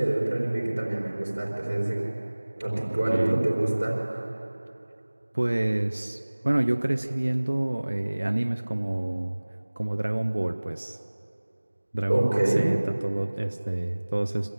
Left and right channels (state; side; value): inverted; both; correlation -1.00